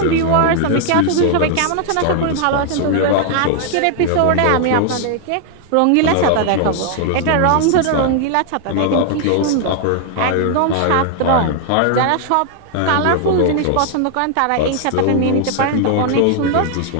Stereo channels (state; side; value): different; both; correlation 0.00